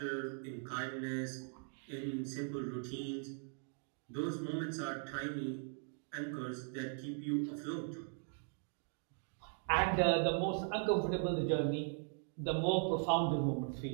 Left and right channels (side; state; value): left; silent; 51 dB below the other